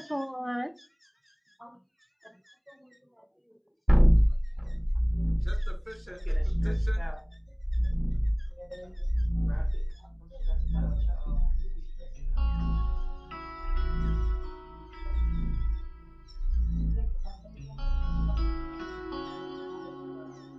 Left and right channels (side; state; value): both; identical; correlation 1.00